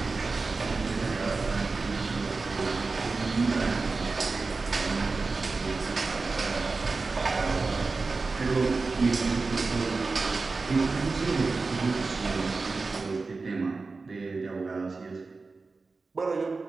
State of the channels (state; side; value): quieter; left; 4.0 dB